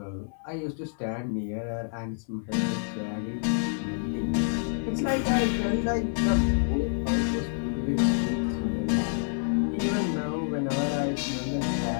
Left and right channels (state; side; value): silent; right; 59 dB below the other